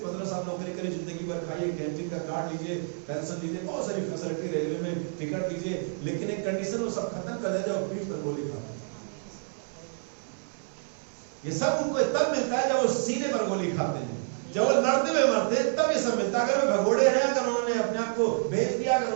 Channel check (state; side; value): silent; left; 59 dB below the other